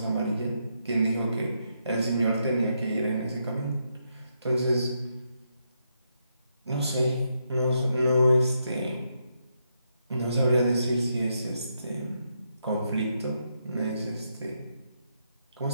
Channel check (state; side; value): inverted; both; correlation -0.80